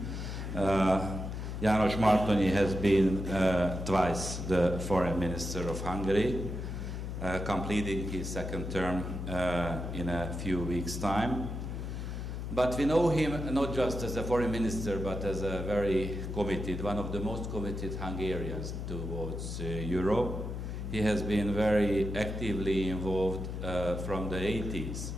János Martonyi has been twice the foreign minister of Hungary, completing his second term in a few weeks' time. But we know him not just as a foreign minister, but as a very committed, one of the most committed Hungarians towards Europe. He has been very actively involved from the 80s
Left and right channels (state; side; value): noise; left; hum, 5 dB below the sound